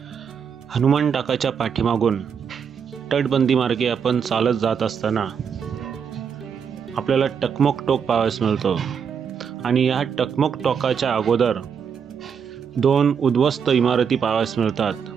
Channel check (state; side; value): quieter; left; 7.0 dB